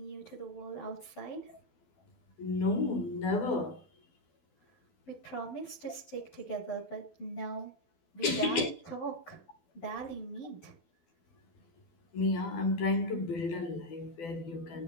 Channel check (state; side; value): late; right; 12 ms